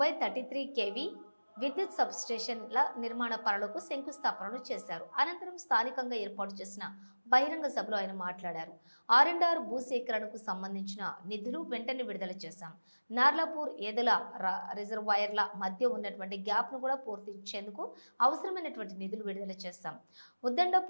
kV విద్యుత్ సబ్స్టేషన్ల నిర్మాణ పనులకు శంకుస్థాపనలు చేశారు. అనంతరం స్థానికంగా ఏర్పాటు చేసిన బహిరంగ సభలో ఆయన మాట్లాడారు. R&R భూసేకరణకు సంబంధించిన నిధులు వెంటనే విడుదల చేశాం. నార్లాపూర్ ఏదల రిజర్వాయర్ల మధ్య ఉన్నటువంటి గ్యాప్ ను కూడా పూర్తించేందుకు అవసరమైనటువంటి నిధులు విడుదల చేశాం.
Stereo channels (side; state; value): both; inverted; correlation -1.00